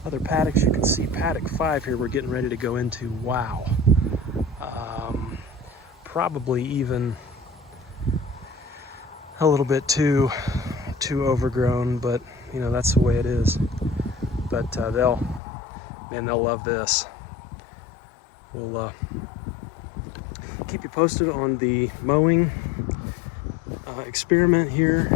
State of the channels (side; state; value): right; drops out; at 15.4 s